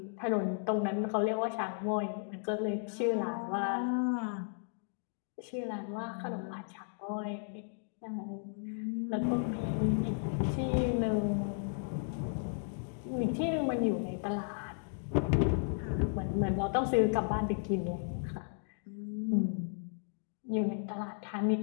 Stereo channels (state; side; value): silent; right; digital silence